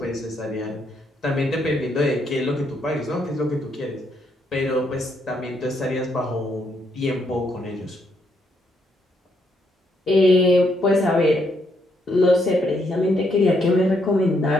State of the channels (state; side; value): normal; both; correlation 0.75